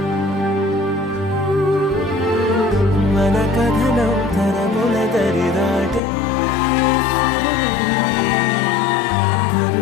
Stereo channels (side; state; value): right; drops out; at 6.0 s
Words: మన కథనం తరముల దరిదాటే